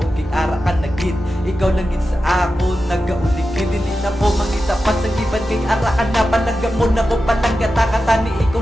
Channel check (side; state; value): both; normal; correlation 0.92